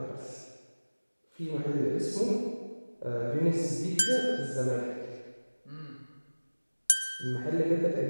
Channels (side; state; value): both; inverted; correlation -1.00